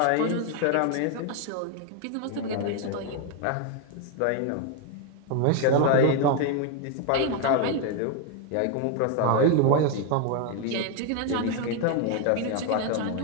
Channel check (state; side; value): different; both; correlation 0.01